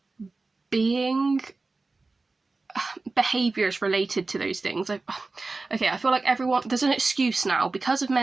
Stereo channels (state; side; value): quieter; left; 3.6 dB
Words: being behaviours related to those things. I feel like there's an excuse now because of